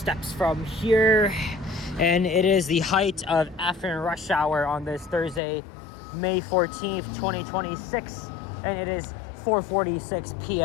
from here. And it is the height of afternoon rush hour on this Thursday, May 14th, 2026. And it is 4:46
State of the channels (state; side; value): drops out; right; at 5.4 s